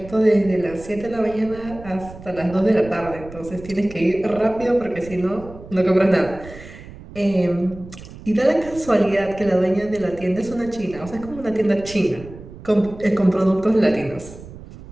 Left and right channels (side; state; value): right; noise; rumble, 16 dB below the sound